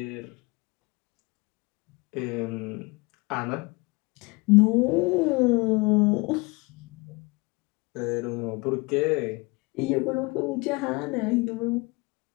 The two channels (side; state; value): right; quieter; 26.3 dB